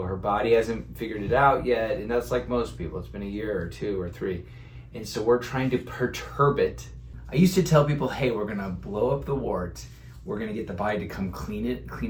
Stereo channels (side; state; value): both; identical; correlation 1.00